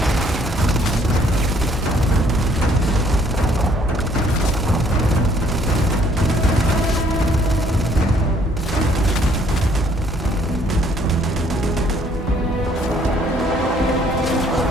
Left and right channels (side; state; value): both; normal; correlation 0.63